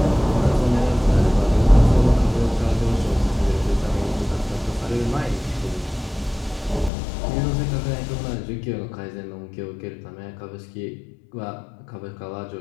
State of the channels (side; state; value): right; drops out; at 6.9 s